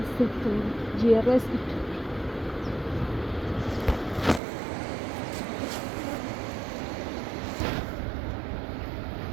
settur, GRS itu.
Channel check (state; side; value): drops out; left; at 4.4 s